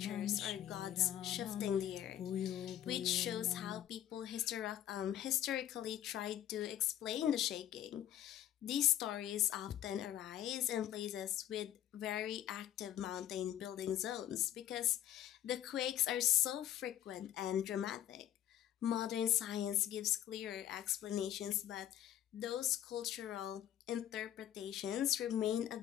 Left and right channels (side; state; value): right; quieter; 11.7 dB